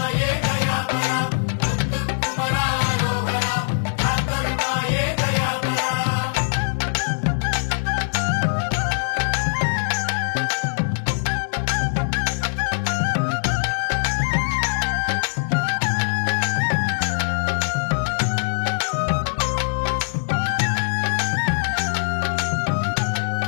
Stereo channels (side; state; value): right; silent; digital silence